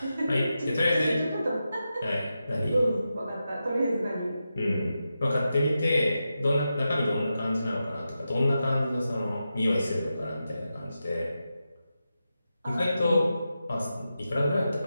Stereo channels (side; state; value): both; inverted; correlation -0.90